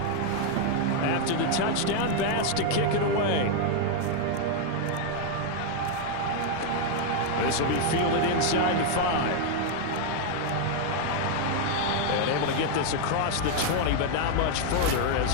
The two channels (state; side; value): different; both; correlation 0.00